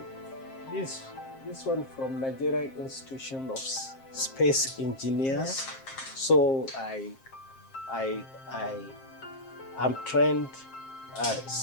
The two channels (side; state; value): right; late; 7.5 ms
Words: this one from Nigerian Institution of Space Engineers. So I'm trained